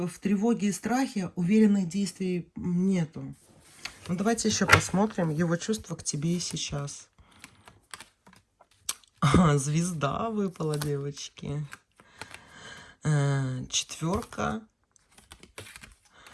тревоге и страхе, уверенных действий нету. Ну, давайте еще посмотрим его чувства к тебе и сейчас. Звезда выпала, девочки. Четверка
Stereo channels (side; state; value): both; identical; correlation 1.00